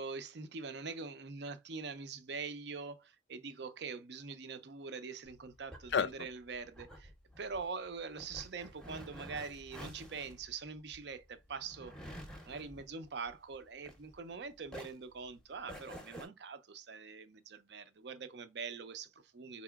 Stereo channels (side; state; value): both; normal; correlation -0.04